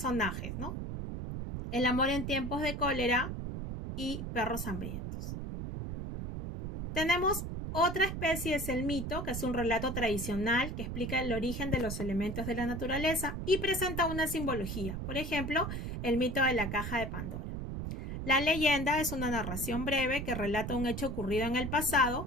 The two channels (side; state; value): right; noise; rumble, 5 dB below the sound